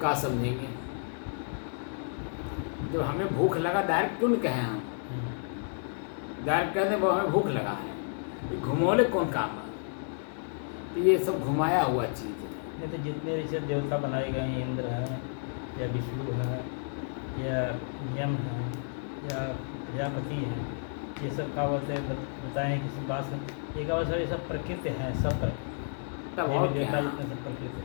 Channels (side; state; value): right; silent; digital silence